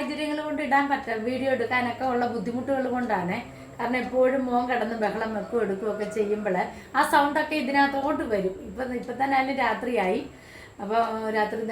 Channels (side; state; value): both; identical; correlation 1.00